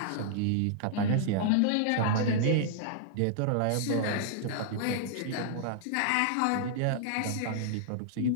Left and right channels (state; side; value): different; both; correlation -0.01